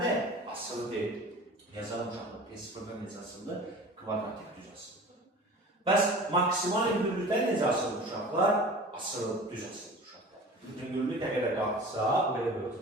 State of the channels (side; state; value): both; normal; correlation 0.40